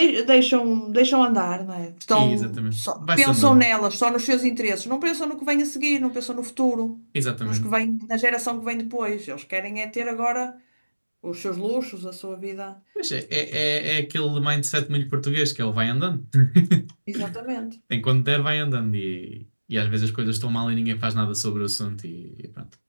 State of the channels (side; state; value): both; inverted; correlation -1.00